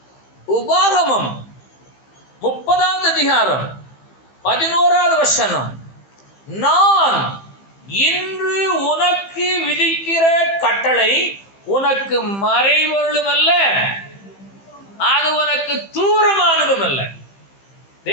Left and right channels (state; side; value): late; right; 15 ms